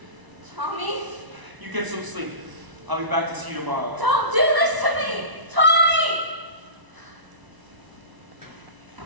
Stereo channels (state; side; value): late; left; 1.0 ms